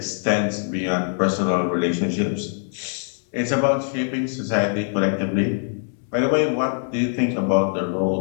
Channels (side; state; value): right; silent; 64 dB below the other